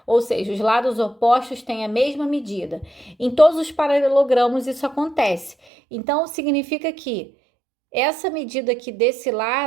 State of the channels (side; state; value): left; drops out; at 5.6 s